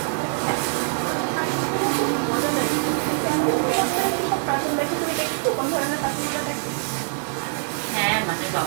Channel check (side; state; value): left; silent; digital silence